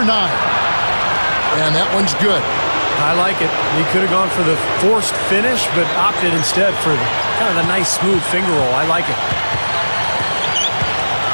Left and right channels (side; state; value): both; inverted; correlation -1.00